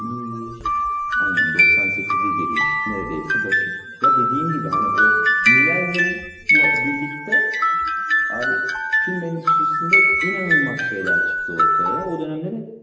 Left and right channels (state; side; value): identical; both; correlation 1.00